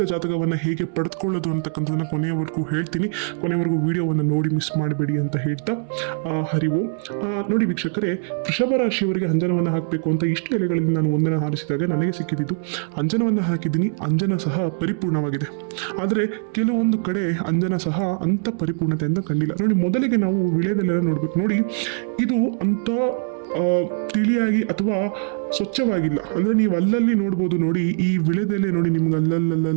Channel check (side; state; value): left; silent; 62 dB below the other